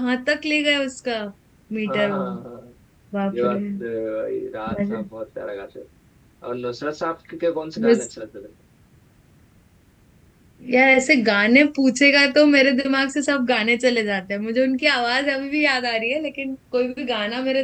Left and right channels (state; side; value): identical; both; correlation 1.00